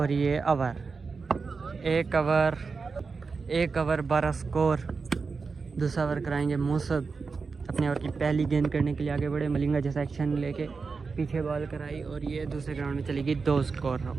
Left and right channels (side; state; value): left; quieter; 4.7 dB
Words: ये ओवर, एक ओवर 12 स्कोर। दूसरा ओवर कराएंगे मूसद, अपने ओवर की पहली गेंद करने के लिए आगे बढ़े, मलिंगा जैसा एक्शन लेके पीछे बॉल कराई, और ये दूसरे ग्राउंड में चलेगी। 2 स्कोर